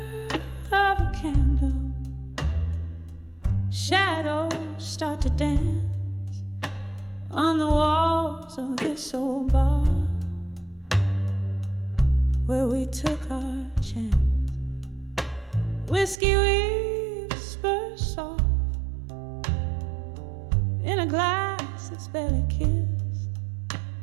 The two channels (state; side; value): drops out; left; at 16.2 s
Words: of a candle, shadows start to dance on the walls of this old bar where we took our chance. Whiskey whispers soft in a glass that's barely kissed.